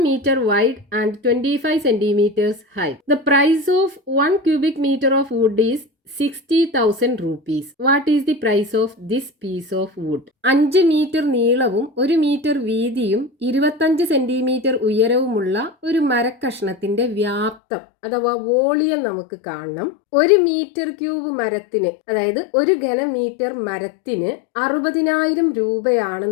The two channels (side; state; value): right; drops out; at 17.6 s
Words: meter wide and 25 centimeters high. The price of 1 cubic meter of wood is 60,000 rupees. What is the price of this piece of wood? 5 metre നീളവും 1 മീറ്റർ വീതിയും 25 സെന്റിമീറ്റർ ഉയരവുമുള്ള ഒരു മരക്കഷ്ണത്തിന്റെ വ്യാപ്തം അഥവാ വോളിയം നമുക്ക് കാണണം. 1 മീറ്റർ ക്യൂബ് മരത്തിന്, അതായത് 1 ഘനമീറ്റർ മരത്തിന് 60,000